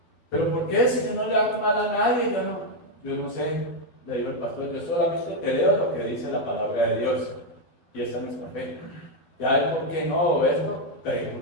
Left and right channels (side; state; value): right; late; 12 ms